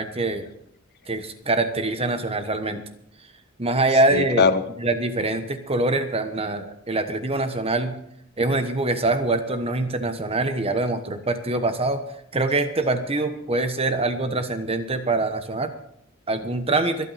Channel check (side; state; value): both; normal; correlation 0.14